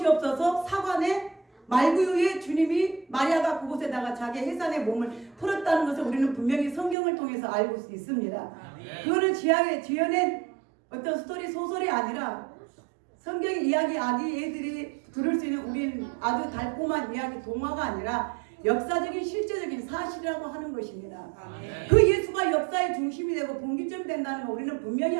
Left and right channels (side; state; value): left; drops out; at 7.0 s